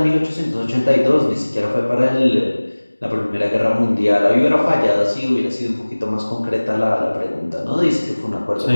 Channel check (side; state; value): both; inverted; correlation -1.00